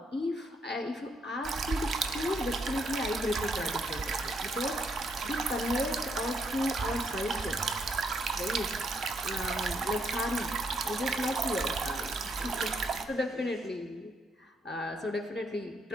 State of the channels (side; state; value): both; normal; correlation 0.74